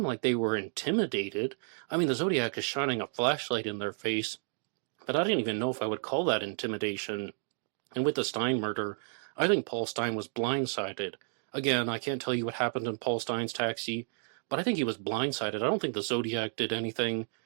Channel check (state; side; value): silent; left; digital silence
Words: like they were intimidated. I mean, the Zodiac is shining a flashlight in their face, but I didn't even know if I would call that intimidation. And with the Stein murder, I think Paul Stein was blindsided. Again, I can't tell you what happened in Paul Stein's taxi, but I think he was blindsided. I don't think the Zodiac did anything